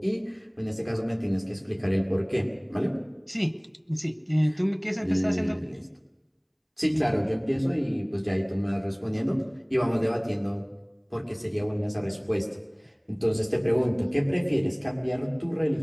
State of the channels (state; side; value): identical; both; correlation 1.00